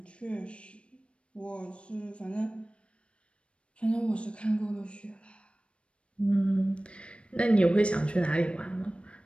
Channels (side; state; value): right; late; 0.059 ms